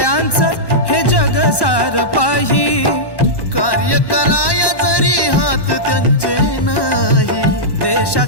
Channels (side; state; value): right; late; 1.1 ms